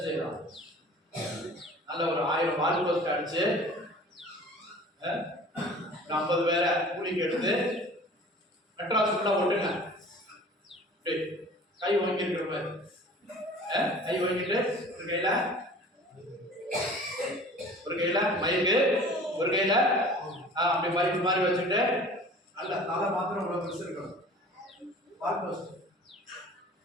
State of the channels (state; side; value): normal; both; correlation 0.45